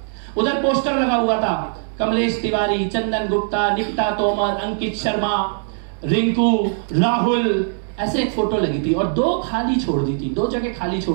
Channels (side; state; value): left; silent; 65 dB below the other